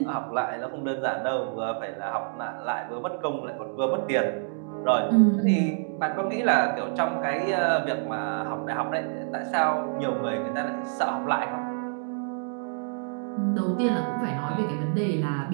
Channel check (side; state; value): left; silent; digital silence